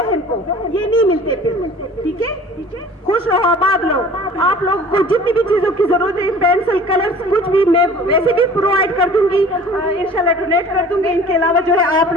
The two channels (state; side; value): normal; both; correlation 0.45